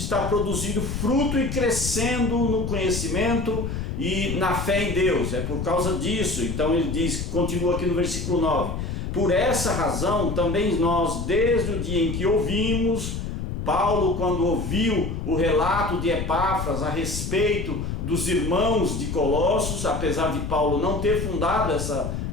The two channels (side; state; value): left; noise; rumble, 4 dB below the sound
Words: produzindo fruto e crescendo no conhecimento e na fé em Deus. É por causa disso. Então ele diz, continua aqui no versículo 9, por essa razão também nós, desde o dia em que ouvimos, Paulo, quando ouviu o relato de Epáfras a respeito dos irmãos de Colossos, apesar de Paulo não ter fundado essa